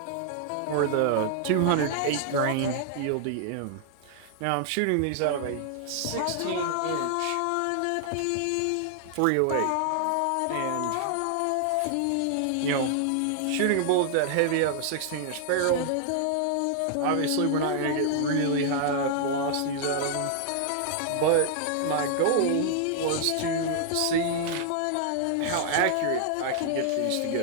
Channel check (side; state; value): both; different; correlation -0.01